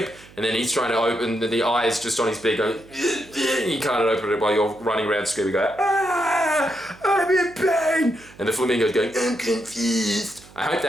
And then he's trying to open, the eye is just on his beak going, and you can't open it while you're running around screaming, going, ah, I'm in pain. And the flamingo's going, I'm confused. I hope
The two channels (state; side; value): noise; right; hum, 23 dB below the sound